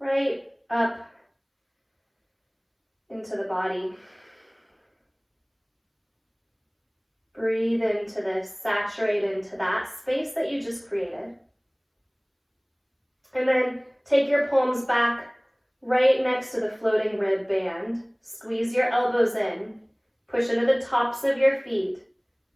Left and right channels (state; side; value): identical; both; correlation 1.00